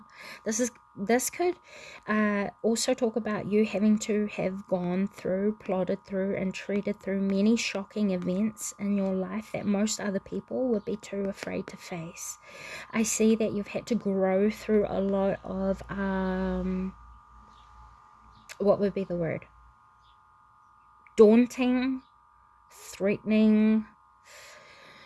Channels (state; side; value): identical; both; correlation 1.00